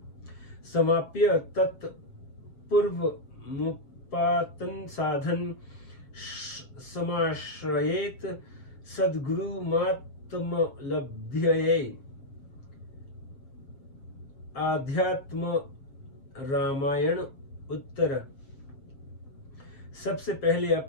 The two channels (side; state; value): right; late; 7.2 ms